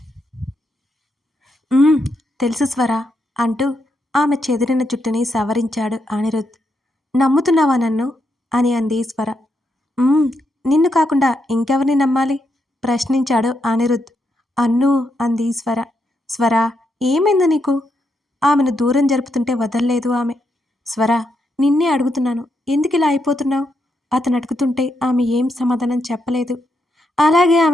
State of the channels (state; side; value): normal; both; correlation 0.81